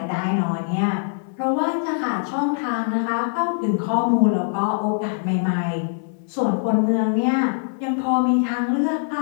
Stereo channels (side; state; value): right; silent; 60 dB below the other